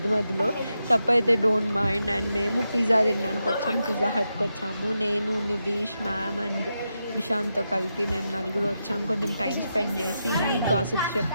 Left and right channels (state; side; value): inverted; both; correlation -0.87